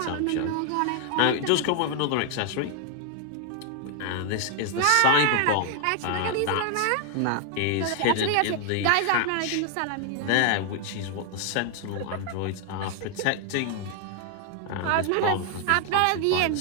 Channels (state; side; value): different; both; correlation 0.01